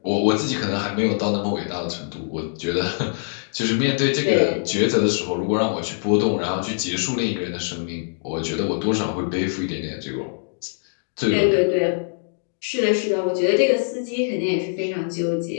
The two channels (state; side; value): silent; right; digital silence